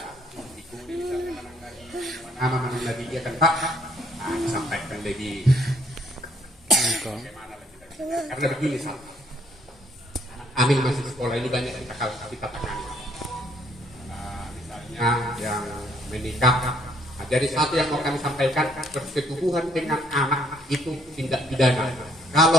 ikuti nama lagi dia kan Pak, disampaikan lagi. Karena begini Pak. Amin masih sekolah ini banyak kita tangani. Misalnya yang menikah. Nah, jadi satu yang mau kami sampaikan, persetubuhan dengan anak itu tindak pidana.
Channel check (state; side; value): normal; both; correlation 0.66